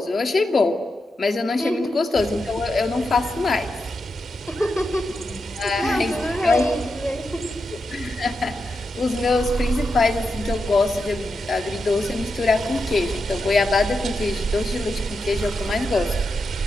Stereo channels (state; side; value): normal; both; correlation 0.87